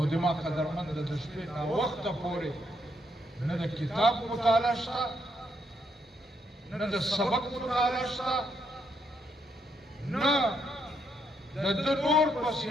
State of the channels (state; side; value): normal; both; correlation 0.77